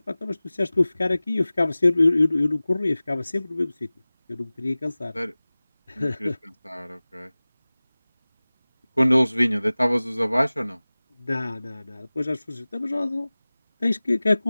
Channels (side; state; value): both; inverted; correlation -0.98